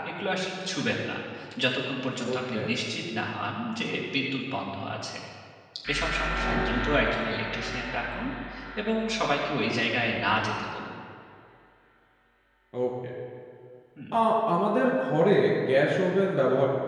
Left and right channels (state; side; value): identical; both; correlation 1.00